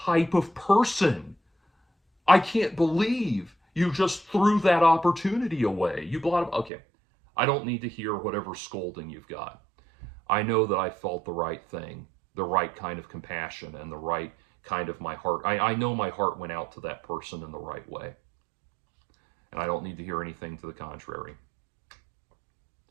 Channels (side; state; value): left; drops out; at 6.7 s